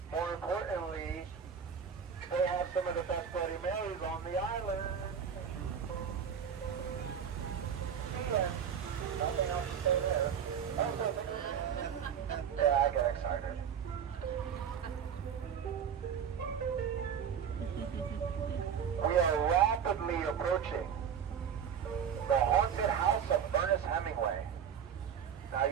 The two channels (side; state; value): left; quieter; 7.8 dB